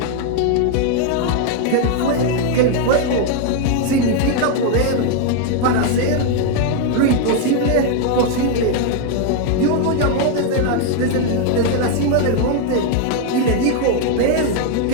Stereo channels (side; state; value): both; different; correlation 0.01